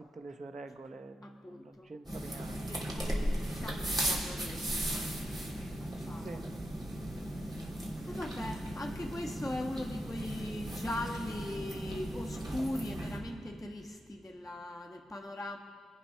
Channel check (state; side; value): normal; both; correlation 0.86